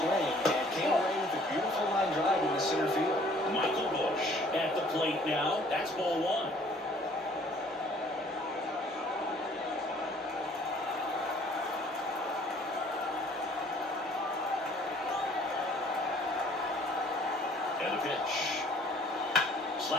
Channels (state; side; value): normal; both; correlation 0.56